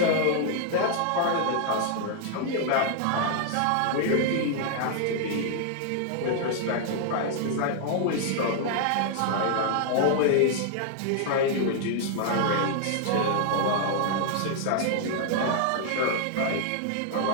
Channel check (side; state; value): both; different; correlation 0.00